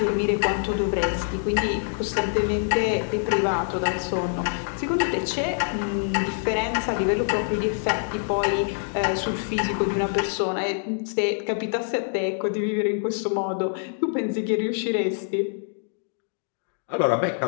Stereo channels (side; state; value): right; silent; digital silence